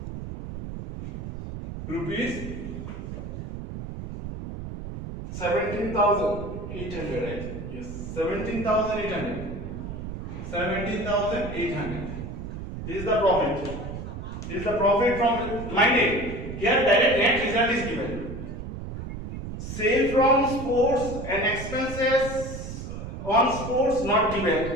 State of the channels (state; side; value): noise; right; rumble, 8 dB below the sound